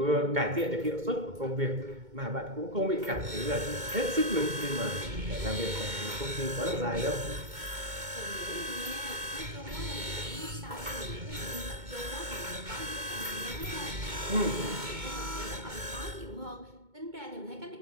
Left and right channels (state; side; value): late; left; 2.2 ms